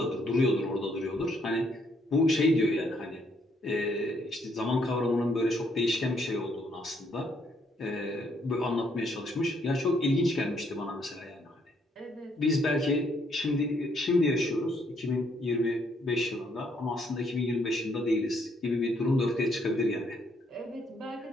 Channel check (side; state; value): both; normal; correlation 0.70